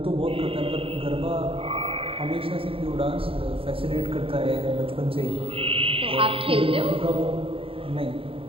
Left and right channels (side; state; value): left; late; 0.27 ms